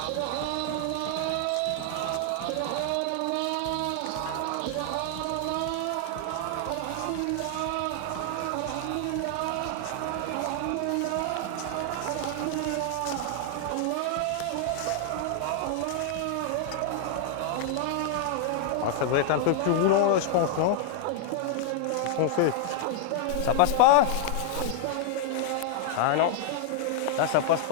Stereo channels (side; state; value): both; different; correlation 0.00